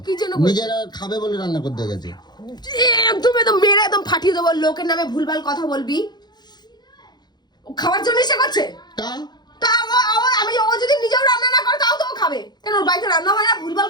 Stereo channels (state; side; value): late; right; 0.21 ms